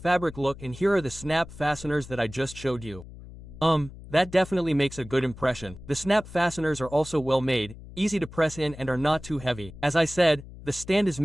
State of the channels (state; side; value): noise; left; hum, 16 dB below the sound